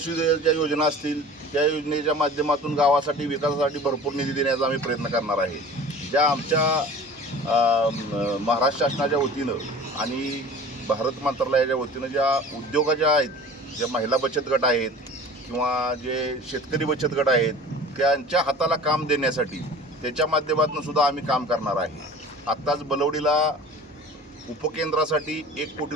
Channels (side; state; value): both; normal; correlation 0.42